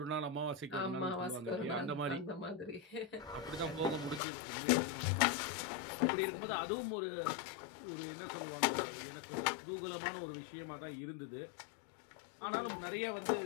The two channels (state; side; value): drops out; right; at 4.2 s